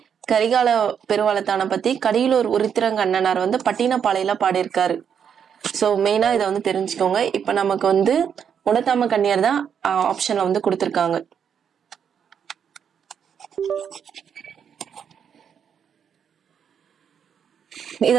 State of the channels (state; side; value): quieter; left; 7.8 dB